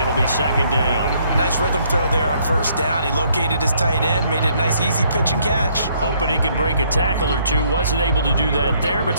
be second down. Nice rhythm throw there on first down. He located his tight end, made it a nice, easy pitch and catch. Hoping he can break a tackle or two. Wasn't able to do that there, but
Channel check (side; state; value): both; inverted; correlation -0.67